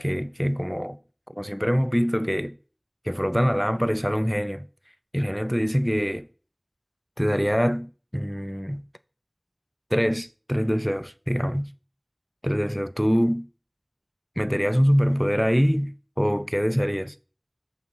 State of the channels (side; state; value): both; identical; correlation 1.00